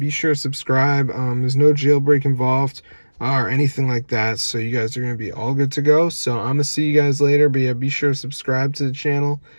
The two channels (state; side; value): inverted; both; correlation -1.00